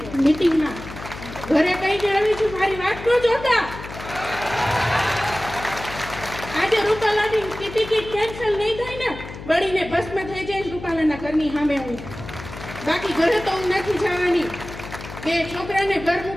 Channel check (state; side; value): noise; left; hum, 12 dB below the sound